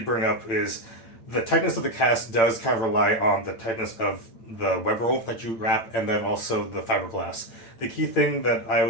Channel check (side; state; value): right; late; 8.8 ms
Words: bring up is the tightness of the cast does kind of rely on the tightness of the web roll that you wrap, and then also the fiberglass. The key thing that I